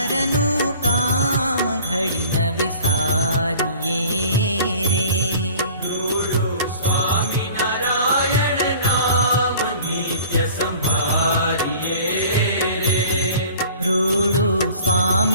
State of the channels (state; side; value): inverted; both; correlation -0.47